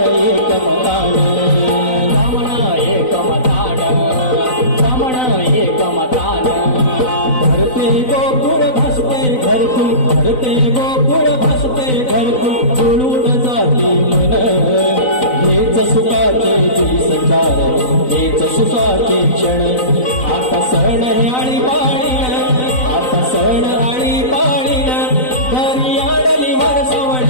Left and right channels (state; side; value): late; right; 4.0 ms